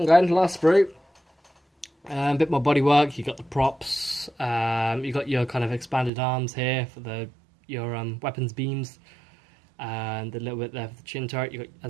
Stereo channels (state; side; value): drops out; left; at 6.1 s